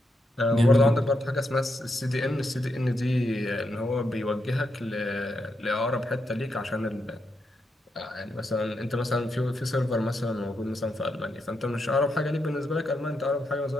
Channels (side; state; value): both; normal; correlation 0.83